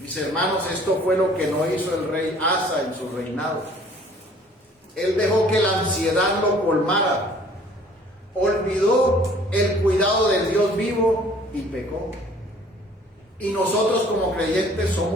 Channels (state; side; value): normal; both; correlation 0.54